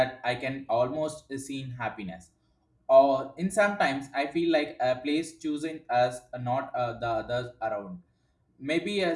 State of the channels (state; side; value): identical; both; correlation 1.00